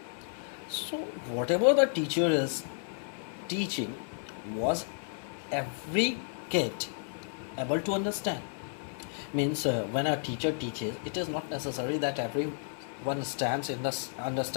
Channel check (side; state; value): right; silent; digital silence